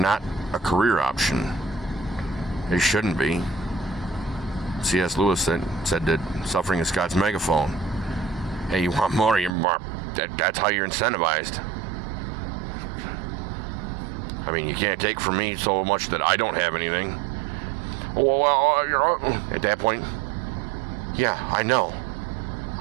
a career option. It shouldn't be. C.S. Lewis said that suffering is God's megaphone. Hey, you want more? That's how you're incentivized. I mean, you can't take from me so much that I don't have anything. Well, at that point, yeah, I know.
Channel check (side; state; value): left; drops out; at 9.5 s